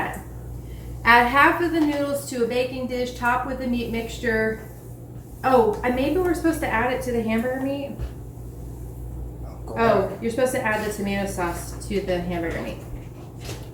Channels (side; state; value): both; identical; correlation 1.00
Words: Add half of the noodles to a baking dish, top with the meat mixture. Oh, and maybe we're supposed to add it to the hamburger meat? Go Oh, back. you're supposed to add the tomato sauce to the hamburger meat.